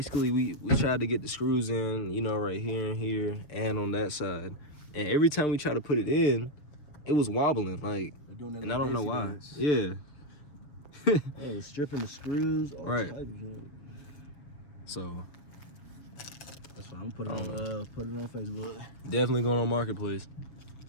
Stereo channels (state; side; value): late; right; 6.8 ms